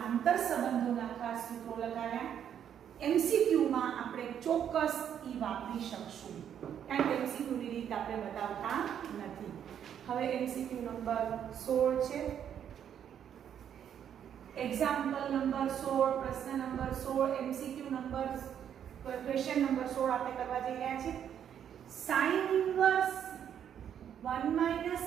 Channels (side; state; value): left; quieter; 9.1 dB